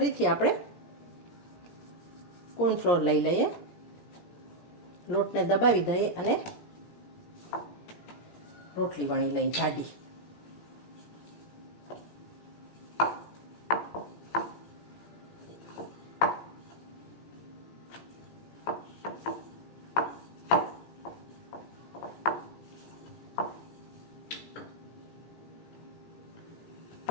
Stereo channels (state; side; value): late; right; 17 ms